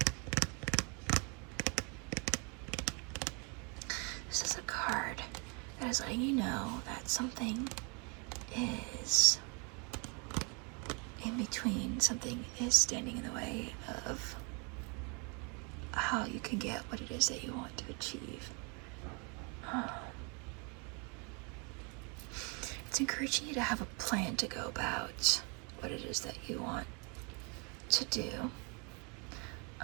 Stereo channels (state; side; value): quieter; left; 33.7 dB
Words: This is a card that is letting you know that something is in between, something is standing in the way of how you can get what it is that you want to achieve. It's encouraging you to have a plan to go about what it is that you want to do.